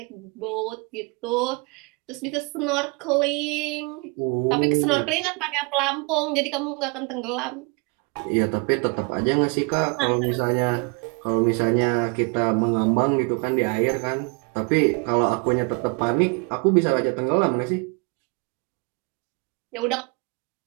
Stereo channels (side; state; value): left; quieter; 31.6 dB